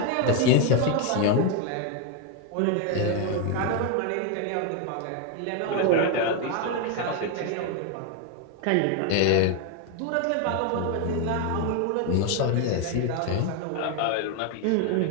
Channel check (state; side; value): different; both; correlation 0.01